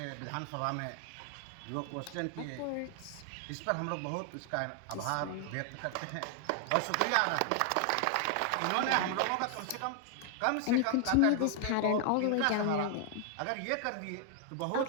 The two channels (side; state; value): both; different; correlation 0.00